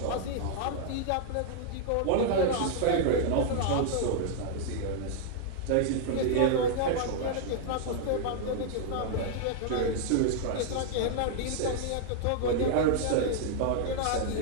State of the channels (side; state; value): both; different; correlation -0.01